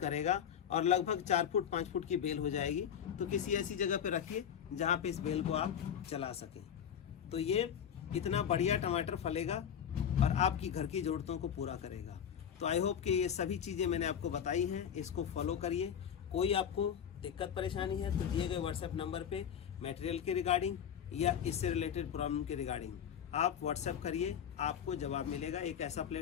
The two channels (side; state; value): right; quieter; 8.6 dB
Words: और लगभग 4 फुट 5 फुट की बेल हो जाएगी। तो किसी ऐसी जगह पे रखिए जहाँ पे इस बेल को आप चला सकें। तो ये इतना बढ़िया टमाटर फलेगा और आपकी घर की ज़रूरतों को पूरा करेगा। तो आई होप कि ये सभी चीज़ें मैंने आपको बताई हैं, इसको फॉलो करिए। कोई आपको दिक्कत परेशानी है तो दिए गए व्हाट्सएप नंबर पे मटेरियल के रिगार्डिंग या इससे रिलेटेड प्रॉब्लम के रिगार्डिंग आप व्हाट्सएप करिए, आपको जवाब मिलेगा। एक ऐसा